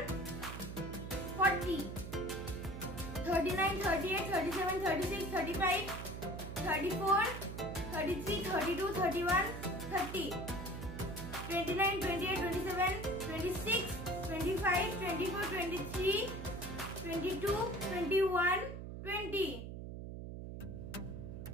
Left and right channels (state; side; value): noise; right; hum, 8 dB below the sound